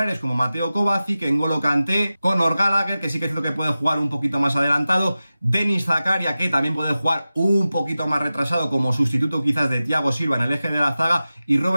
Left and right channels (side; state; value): both; inverted; correlation -0.95